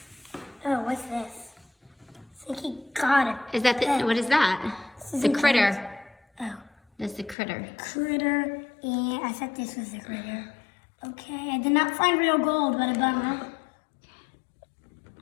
Oh, what's this? I think he got it. Is that what is that? This is The a critter. Oh, That's the critter. critter. And I thought this was the critter. Okay, I did not find real gold, but a bummer.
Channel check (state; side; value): drops out; right; at 7.4 s